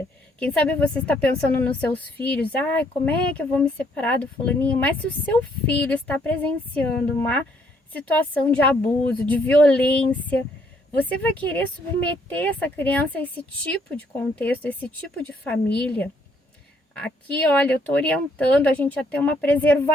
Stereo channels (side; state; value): both; normal; correlation 0.68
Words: Quem sabe você está pensando nos seus filhos: como é que eu vou me separar do fulaninho? Mas se o seu filho está presenciando uma situação de abuso, de violência, você vai querer submeter essa criança a esse tipo de contexto, a esse tipo de família? Aqui, olha, eu tô orientando a gente a ter uma